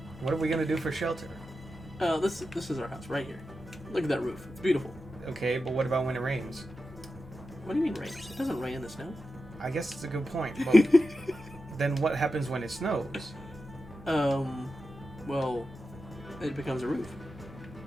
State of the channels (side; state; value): both; normal; correlation 0.91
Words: What are we gonna do for shelter? This is our house right here. Look at that roof. It's beautiful. Okay, but what about when it rains? What do you mean rain? It doesn't rain in the snow. I guess it's a good point. But then what happens when it snows? Well, it becomes a roof.